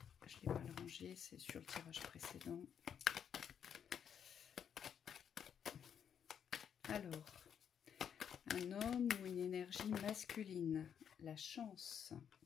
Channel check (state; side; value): quieter; right; 8.2 dB